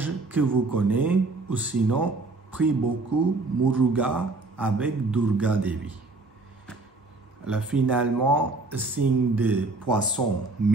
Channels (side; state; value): left; quieter; 3.3 dB